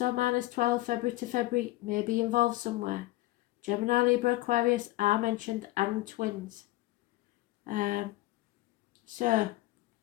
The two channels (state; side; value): quieter; right; 17.7 dB